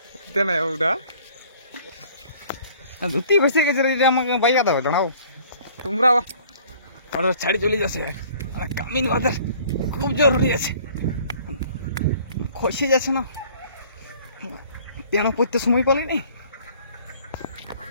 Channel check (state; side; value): inverted; both; correlation -0.53